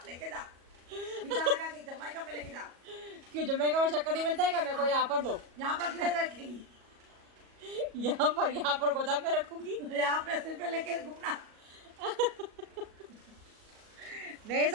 लेके जा, फीता लगा के जमाइका में लेके जा। क्यों जमैका में शक्कर नहीं मिलता है क्या? मेरे को यहाँ पर दो। यहाँ पर किधर रखेगी? यहाँ पर गोदाम में रखूंगी। यहाँ पे सिर पे लेके घूमना। नहीं,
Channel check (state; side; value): late; left; 37 ms